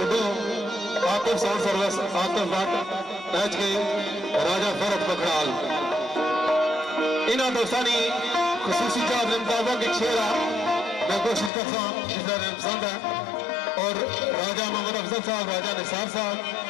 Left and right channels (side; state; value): right; drops out; at 11.5 s